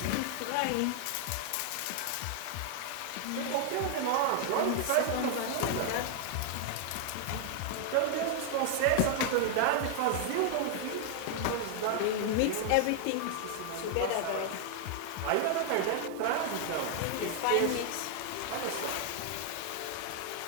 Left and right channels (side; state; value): both; different; correlation 0.00